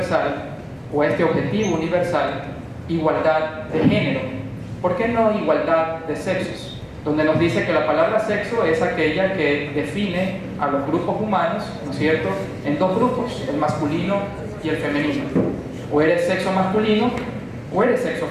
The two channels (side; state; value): both; identical; correlation 1.00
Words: o a este objetivo universal igualdad de género. ¿Por qué no igualdad de sexos? Donde nos dice que la palabra sexo es aquella que define a los grupos humanos, ¿no es cierto?, en dos grupos, el masculino y el femenino. O eres sexo masculino o eres sexo